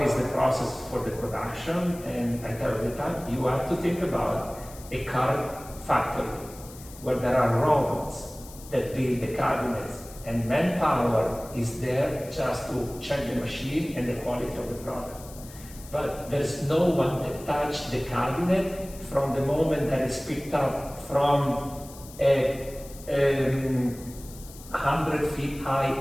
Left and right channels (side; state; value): left; noise; hiss, 18 dB below the sound